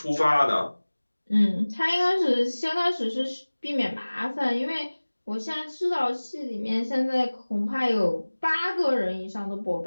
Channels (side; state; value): both; inverted; correlation -1.00